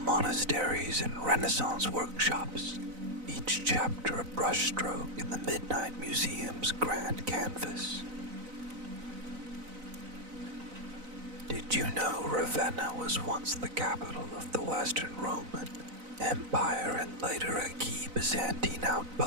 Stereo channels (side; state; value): left; late; 4.0 ms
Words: monasteries and Renaissance workshops, each chapter a brushstroke in the Midnight Museum's grand canvas. Did you know Ravenna was once the capital of the Western Roman Empire and later a key Byzantine